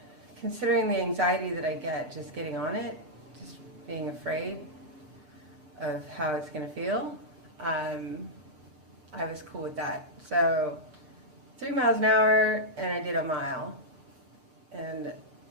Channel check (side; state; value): left; late; 7.1 ms